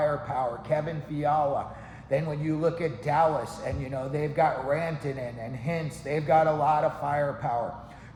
Kevin Fiala. Then when you look at Dallas, and they've got Rantanen and Hintz, they've got a lot of firepower.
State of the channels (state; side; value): identical; both; correlation 1.00